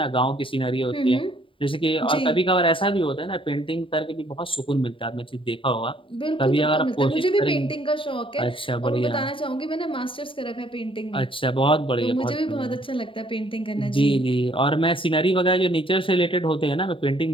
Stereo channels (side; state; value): right; late; 0.25 ms